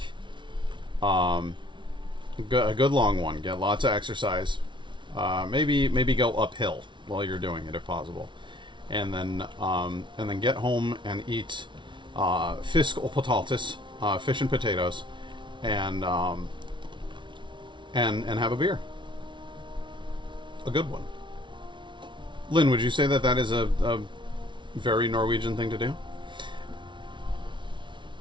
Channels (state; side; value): late; left; 0.24 ms